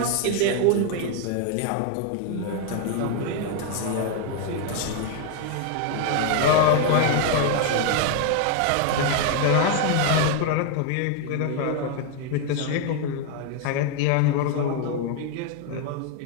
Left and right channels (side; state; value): both; different; correlation 0.01